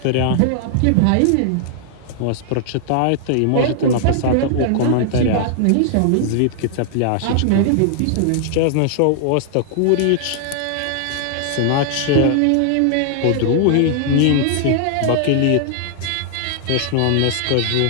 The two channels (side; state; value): both; different; correlation -0.01